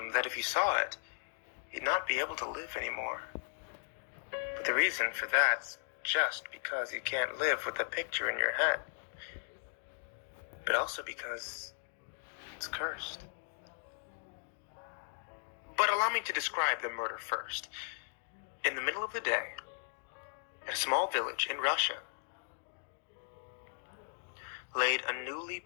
that if you saw it, you'd not be able to live anymore. But the reason for that's just because you can't live with the picture in your head. But also because it's cursed. But allow me to describe the murder first. In the middle of the day, at a small village in Russia, laid a newly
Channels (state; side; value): silent; right; digital silence